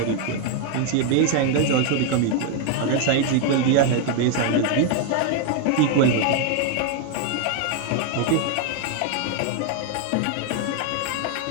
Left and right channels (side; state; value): both; different; correlation 0.01